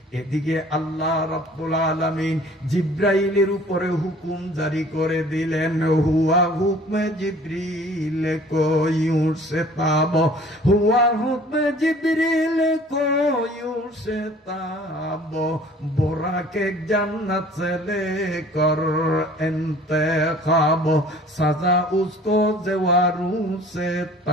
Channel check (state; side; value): normal; both; correlation 0.51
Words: এদিকে আল্লাহ রাব্বুল আলামিন জিব্রাইলের উপরে হুকুম জারি করে দিলেন, হুয়া হুকমে জিব্রিল কোয়ু সে তাব, হুয়া হুকমে জিব্রিল কোয়ু সে তাব, বোরাকে জান্নাত से लेकर इंतखाब, सजा उसको जवारू से